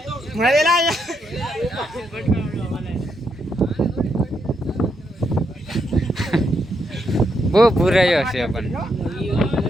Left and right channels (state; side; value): normal; both; correlation 0.79